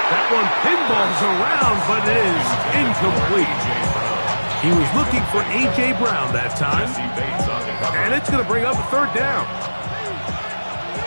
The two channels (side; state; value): both; inverted; correlation -1.00